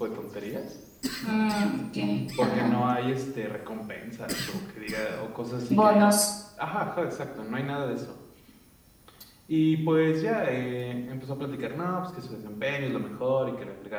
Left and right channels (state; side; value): identical; both; correlation 1.00